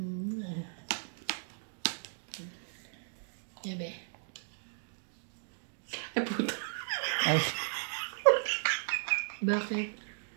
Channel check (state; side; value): silent; left; digital silence